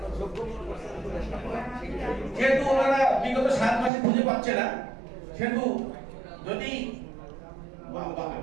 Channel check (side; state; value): left; drops out; at 3.9 s